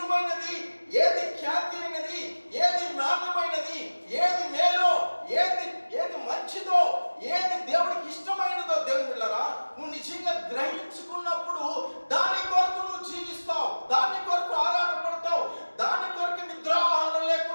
ఏది ఖ్యాతి అయినది, ఏది నాణ్యమైనది, ఏది మేలో, ఏది మంచిదో, ఏది దేవుడికి ఇష్టమైనదో దేవుని బిడ్డలారా నువ్వు నిజంగా గ్రహించుకున్నప్పుడు దాని కొరకు నువ్వు జీవిస్తావు, దాని కొరకు ఆరాటపడతావు, దాని కొరకు నిద్రాహారం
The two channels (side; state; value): both; inverted; correlation -1.00